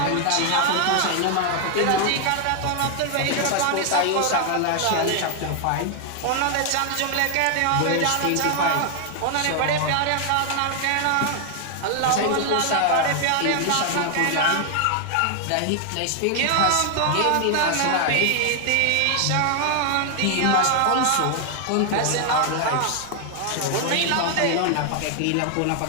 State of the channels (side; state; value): both; different; correlation 0.00